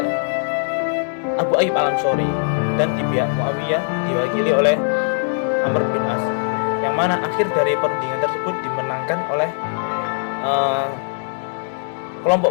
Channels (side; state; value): right; silent; digital silence